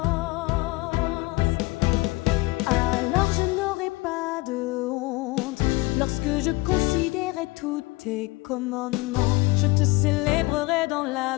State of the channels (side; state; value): right; quieter; 22.9 dB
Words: Alors je n'aurai pas de honte lorsque je considérerai tous tes commandements. Je te célébrerai dans